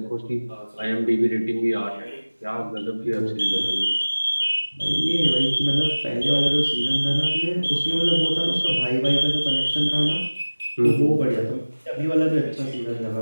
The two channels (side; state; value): both; inverted; correlation -1.00